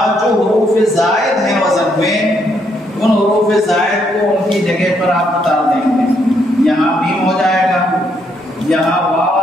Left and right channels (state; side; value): normal; both; correlation 0.74